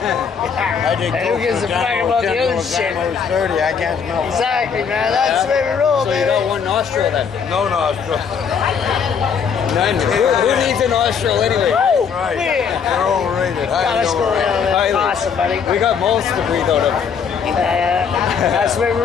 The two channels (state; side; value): quieter; right; 6.6 dB